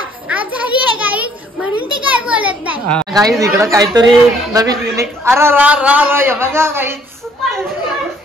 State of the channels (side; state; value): both; normal; correlation 0.63